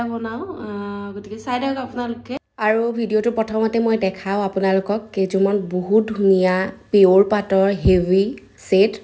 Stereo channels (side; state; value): both; identical; correlation 1.00